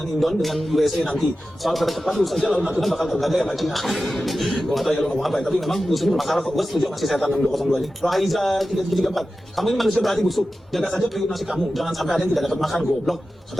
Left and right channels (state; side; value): normal; both; correlation 0.93